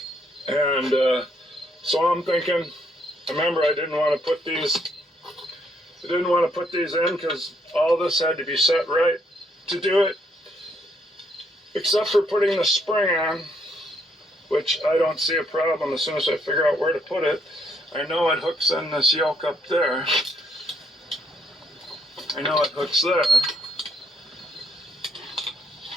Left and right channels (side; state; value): both; normal; correlation 0.72